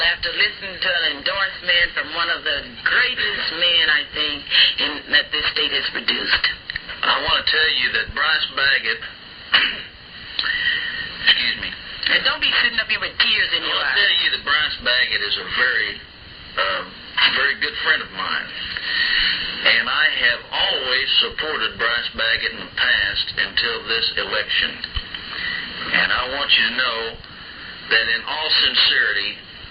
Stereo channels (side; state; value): both; identical; correlation 1.00